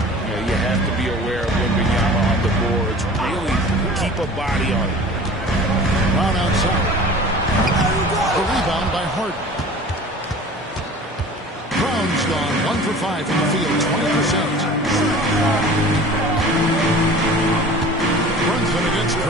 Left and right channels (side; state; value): both; normal; correlation 0.42